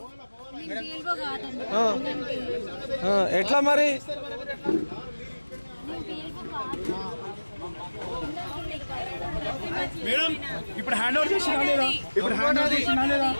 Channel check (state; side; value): inverted; both; correlation -1.00